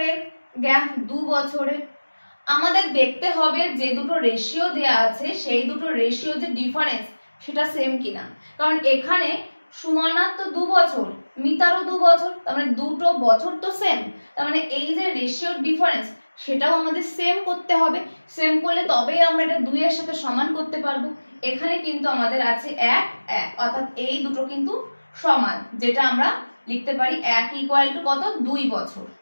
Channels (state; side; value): inverted; both; correlation -1.00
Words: গ্যাপ? 2 বছরের। আমাদের দেখতে হবে যে দুটো রেশিও দেয়া আছে সেই দুটো রেশিও যে ডিফারেন্স সেটা সেম কিনা, কারণ এখানে সুমনার তো 2 বছর, মিতারও 2 বছর, তার মানে দুটো বছর তো সেম, তার মানে এই যে রেশিওর ডিফারেন্স সেটাও আমাদের সেম করতে হবে। সেম করলে তবেই আমরা এটা 2 এর সাথে সমান করতে পারবো। এখানে কিন্তু আমাদের আছে 1 1, অর্থাৎ এই দুটো কিন্তু সমান, যেটা আমরা লিখতে পারি 1 ইকুয়াল টু কত? 2 বছর।